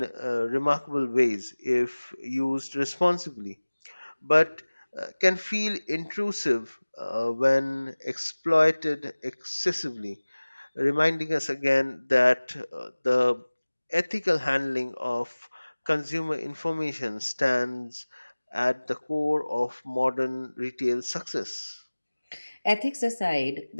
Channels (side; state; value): both; inverted; correlation -1.00